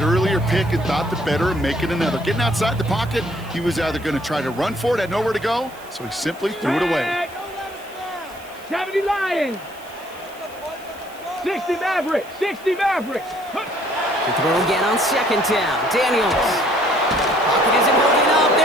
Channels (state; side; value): noise; right; hiss, 23 dB below the sound